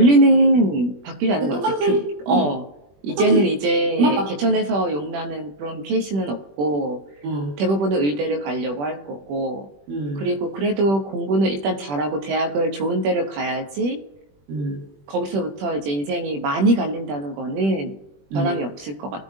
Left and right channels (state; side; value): late; left; 21 ms